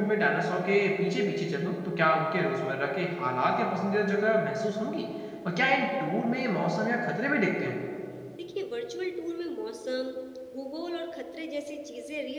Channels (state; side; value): identical; both; correlation 1.00